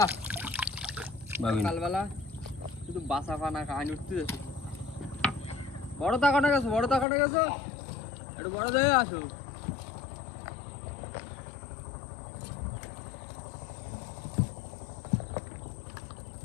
বাবিন সকালবেলা শুধু বাসা ফানা কাহিনী উঠতে যাচ্ছে। বড় তাকানো গেছো, বড় তাকানো গেছো, একটু বড় দেখে আসো।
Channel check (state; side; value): drops out; right; at 7.1 s